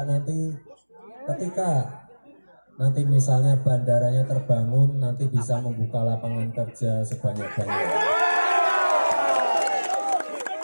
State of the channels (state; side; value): inverted; both; correlation -1.00